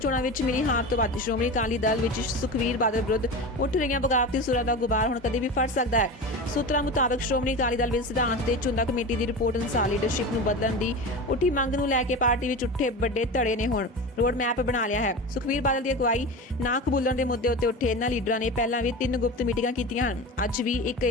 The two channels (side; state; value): both; normal; correlation 0.28